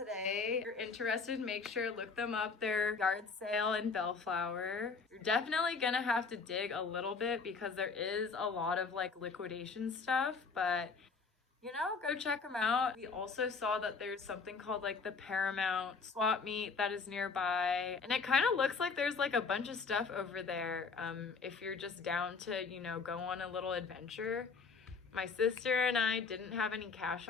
If you're interested, make sure look them up. They're Yard Sale in Bellflower. You're definitely gonna have to dig a little bit because there is a lot of like liquidation stuff, but you know, go check them out. We also saw that there's something called like the Paramount swap meet that is nearby. And it kind of looks like there's like a bunch of stuff over there if you're just down to, you know, go on a little adventure. My sister and I didn't have any cash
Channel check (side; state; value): right; quieter; 4.9 dB